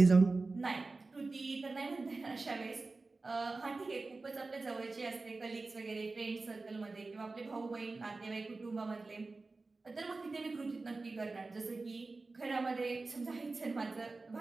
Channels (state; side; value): quieter; left; 3.6 dB